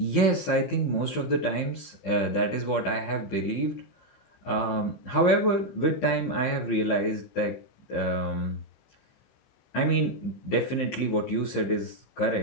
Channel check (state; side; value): late; right; 15 ms